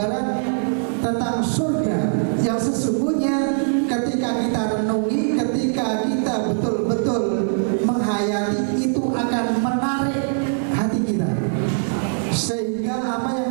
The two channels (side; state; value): left; silent; digital silence